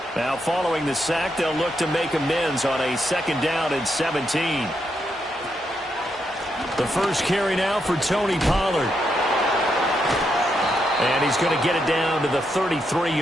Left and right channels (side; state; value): both; normal; correlation 0.81